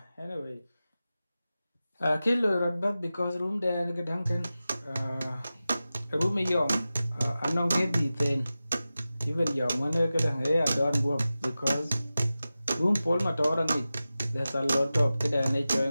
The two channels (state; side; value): inverted; both; correlation -0.95